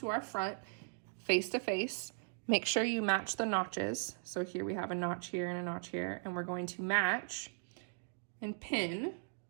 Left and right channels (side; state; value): left; silent; digital silence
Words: our front face to face. Make sure you match the notches. So here we have a notch here and a notch here, and we're going to match and pin.